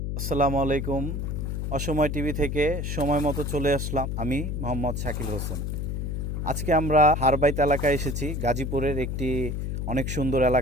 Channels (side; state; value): left; noise; hum, 2 dB below the sound